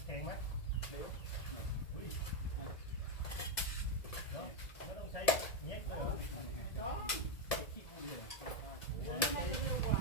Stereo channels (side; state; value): right; late; 1.7 ms